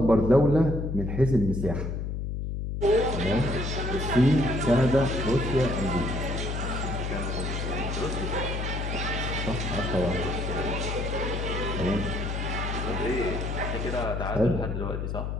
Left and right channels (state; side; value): noise; left; hum, 3 dB below the sound